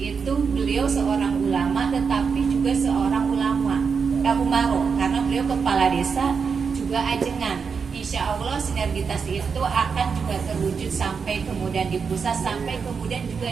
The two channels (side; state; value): left; quieter; 5.8 dB